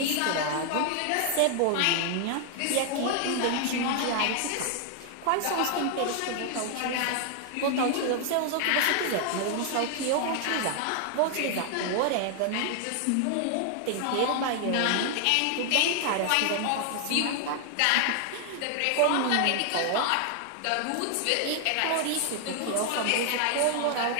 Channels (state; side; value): different; both; correlation 0.00